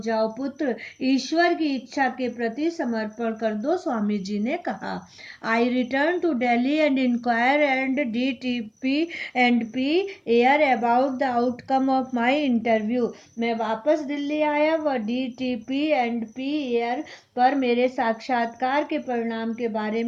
जाओ पुत्र, ईश्वर की इच्छा के प्रति समर्पण कर दो, स्वामी जी ने कहा. I return to Delhi and inquire and DTP and P air about the outcome of my interview. मैं वापस दिल्ली आया व DTP and P air पर मेरे साक्षात्कार के परिणाम के बारे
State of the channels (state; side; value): identical; both; correlation 1.00